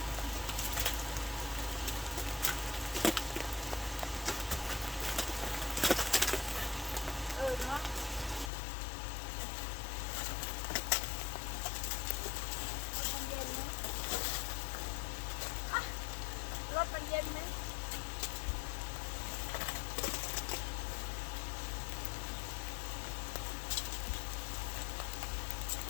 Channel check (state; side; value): drops out; right; at 8.5 s